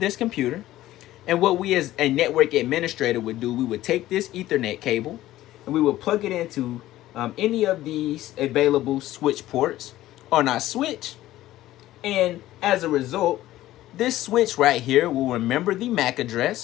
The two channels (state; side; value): quieter; right; 15.0 dB